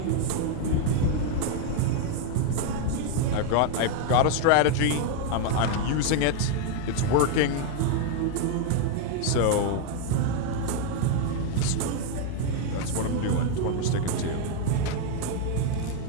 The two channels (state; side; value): different; both; correlation 0.00